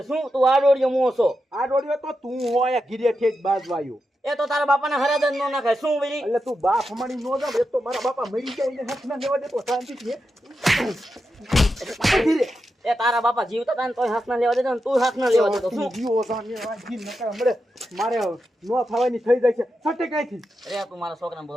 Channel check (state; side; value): normal; both; correlation 0.88